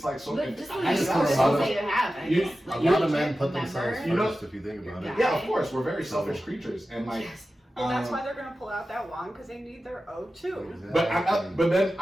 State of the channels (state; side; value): normal; both; correlation 0.94